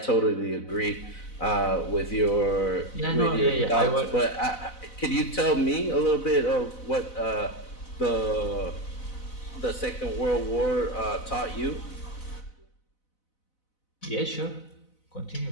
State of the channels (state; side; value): late; right; 4.0 ms